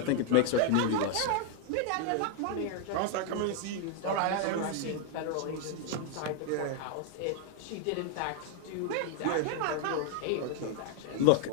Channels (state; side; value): different; both; correlation 0.00